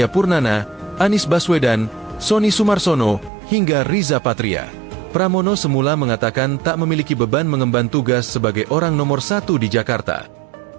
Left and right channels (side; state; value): left; drops out; at 3.3 s